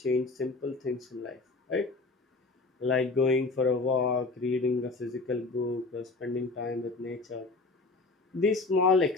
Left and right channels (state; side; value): quieter; right; 3.6 dB